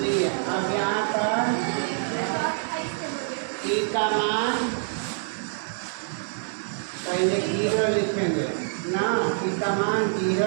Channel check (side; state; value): left; silent; digital silence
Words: अब यहाँ पर t का मान पहले 0 लिखेंगे ना, t का मान